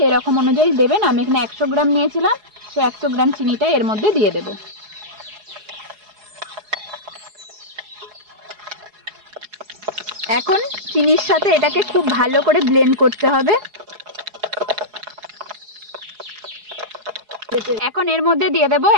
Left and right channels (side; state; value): left; late; 4.8 ms